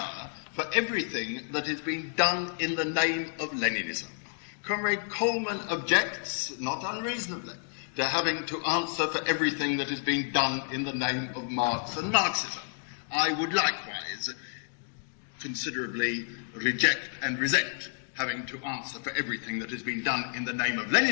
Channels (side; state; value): right; silent; 58 dB below the other